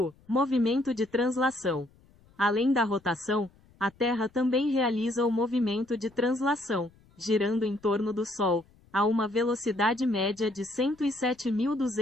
Movimento de translação. Além da rotação, a Terra também realiza o movimento de translação, girando em torno do Sol, a uma velocidade média de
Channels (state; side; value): noise; left; rumble, 30 dB below the sound